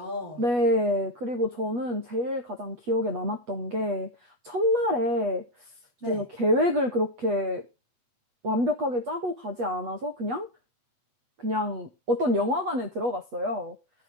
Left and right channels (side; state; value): left; late; 8.2 ms